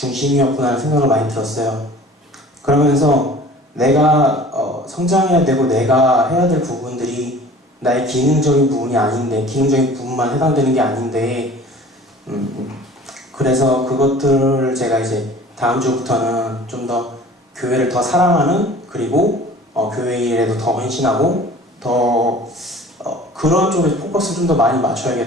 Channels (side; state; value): both; normal; correlation 0.46